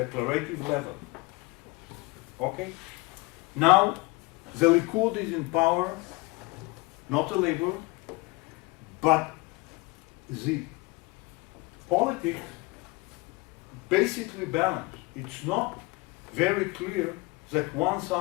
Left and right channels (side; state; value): right; quieter; 24.5 dB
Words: level. Okay? Now, the Likud is in power, not the Labour, but the politics basically balanced. It's not very clear that one